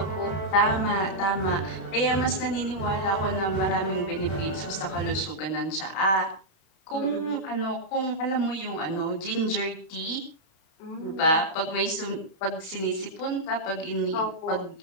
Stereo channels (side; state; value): right; late; 31 ms